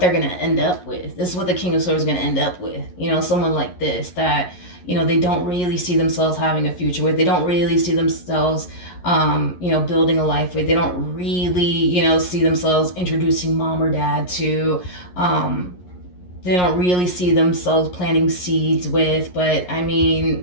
going to end up with. This is what the King of Swords is going to end up with. You know, someone like this that, you know, they don't really see themselves having a future with. They don't really see themselves, you know, building a life with. They don't really, you know, see themselves introducing mom or dad to. They don't really see themselves planting seeds with. But, I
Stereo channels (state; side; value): late; right; 11 ms